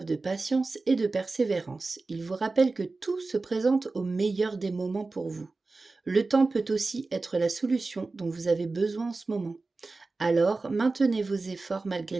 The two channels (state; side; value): quieter; left; 3.6 dB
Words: de patience et de persévérance. Ils vous rappellent que tout se présente au meilleur des moments pour vous. Le temps peut aussi être la solution dont vous avez besoin en ce moment. Alors, maintenez vos efforts malgré